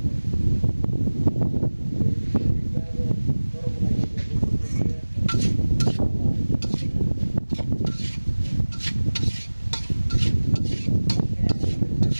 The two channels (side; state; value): both; inverted; correlation -1.00